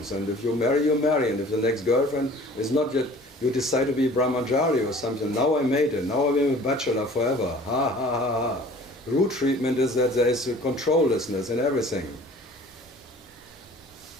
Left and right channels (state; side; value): normal; both; correlation 0.48